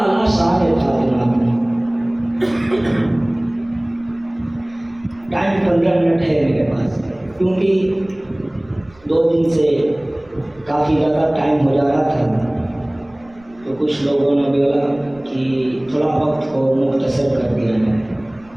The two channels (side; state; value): right; noise; rumble, 28 dB below the sound